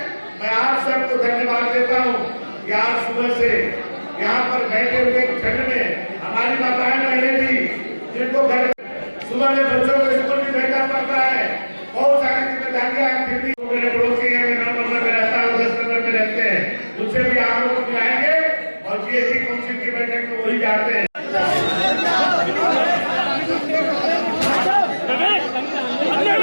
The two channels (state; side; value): inverted; both; correlation -1.00